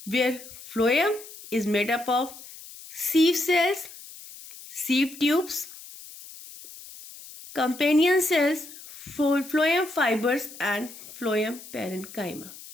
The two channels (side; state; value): left; noise; hiss, 16 dB below the sound